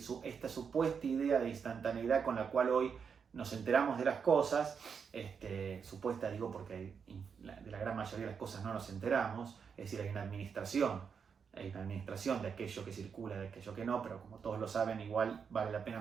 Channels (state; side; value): quieter; left; 6.4 dB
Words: Esta supuesta idea de instantaneidad con la cual hoy nos enteramos de las cosas, supuesta digo porque de la gran mayoría de las cosas no nos enteramos, es decir, hay una administración de aquello que circula, de aquello que no, pero como todos lo saben, igual vale la pena